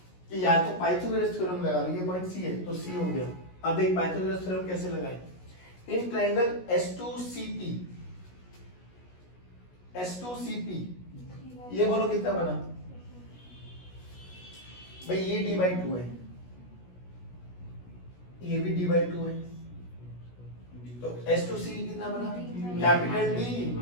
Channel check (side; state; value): right; late; 16 ms